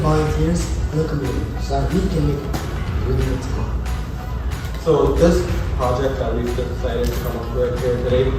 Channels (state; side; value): identical; both; correlation 1.00